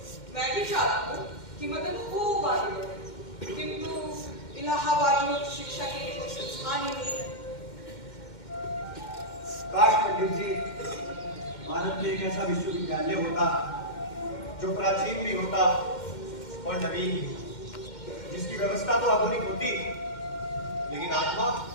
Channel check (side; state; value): right; late; 2.1 ms